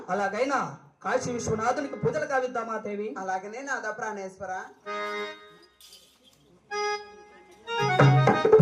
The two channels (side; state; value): both; identical; correlation 1.00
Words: అలాగైనా కాశీ విశ్వనాథునికి పూజలు కావిద్దామా దేవి? అలాగనే నాథ ప్రాణేశ్వర.